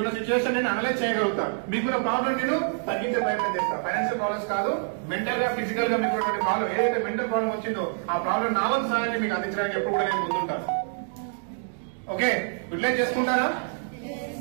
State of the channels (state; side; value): silent; left; digital silence